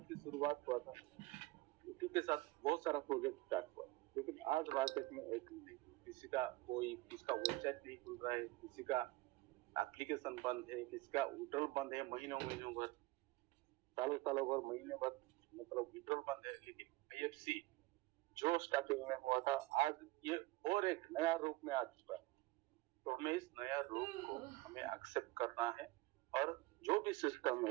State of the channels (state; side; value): quieter; left; 19.7 dB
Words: की शुरुआत हुआ था उसी के साथ बहुत सारा प्रोजेक्ट स्टार्ट हुआ, लेकिन आज मार्केट में एक किसका वेबसाइट नहीं खुल रहा है, किसी का एप्लीकेशन बंद है, किसी का विड्रॉल बंद है महीनों भर, सालों भर, महीने भर, मतलब विड्रॉल बंद है। लेकिन IFC जो स्टार्टिंग में हुआ था आज ये और एक नया रूप में आ चुका है। तो हमें इस नया रूप को हमें एक्सेप्ट करना है और जो भी सिस्टम